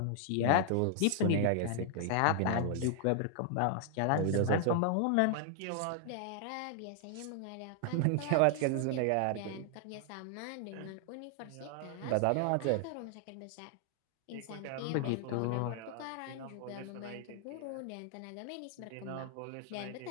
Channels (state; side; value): different; both; correlation 0.00